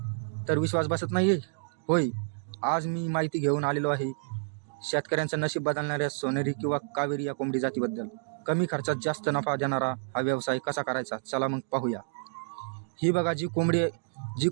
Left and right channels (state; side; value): silent; left; digital silence